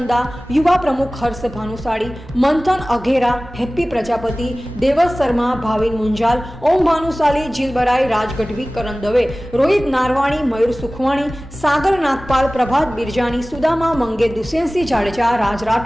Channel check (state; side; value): normal; both; correlation 0.98